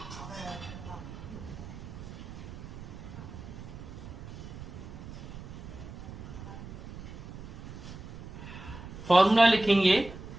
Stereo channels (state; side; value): noise; right; rumble, 12 dB below the sound